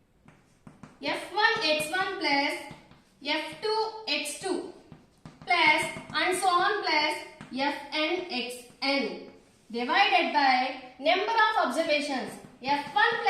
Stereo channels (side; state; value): both; identical; correlation 1.00